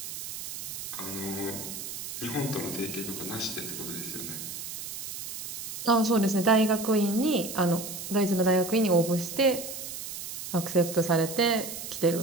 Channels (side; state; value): right; noise; hiss, 8 dB below the sound